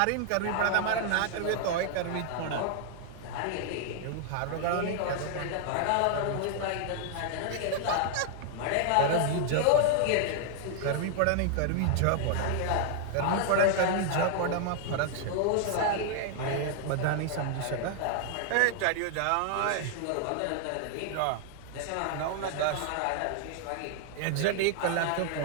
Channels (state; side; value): different; both; correlation 0.00